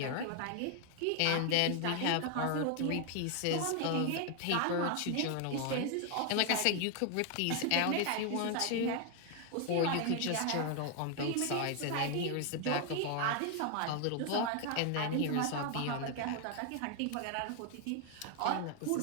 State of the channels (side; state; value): both; different; correlation 0.00